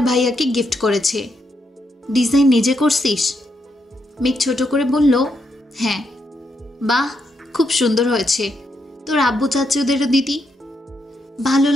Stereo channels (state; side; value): normal; both; correlation 0.80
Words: ভাইয়াকে গিফট করেছে। ডিজাইন নিজে করছিস? মেঘ ছোট করে বলল, হ্যাঁ। বাহ, খুব সুন্দর হয়েছে। তোর আব্বু চাচ্ছে ওদেরও দিতি। ভালো